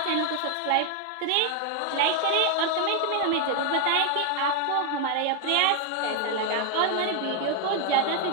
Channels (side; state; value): both; different; correlation 0.00